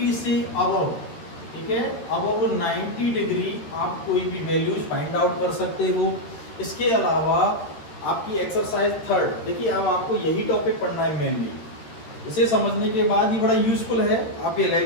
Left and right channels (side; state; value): right; late; 13 ms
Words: से अबव, ठीक है, अबव 90 डिग्री आप कोई भी वैल्यूज फाइंड आउट कर सकते हो। इसके अलावा आपकी एक्सरसाइज 3, देखिए अब आपको यही टॉपिक पढ़ना है मेनली। इसे समझने के बाद ही बड़ा यूजफुल है आप